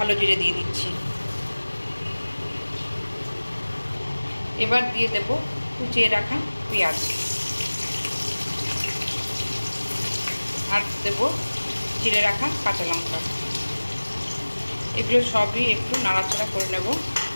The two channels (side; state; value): both; inverted; correlation -1.00